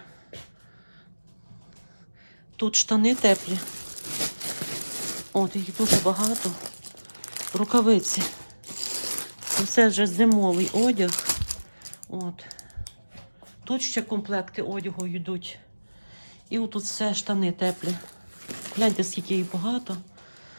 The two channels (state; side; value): inverted; both; correlation -1.00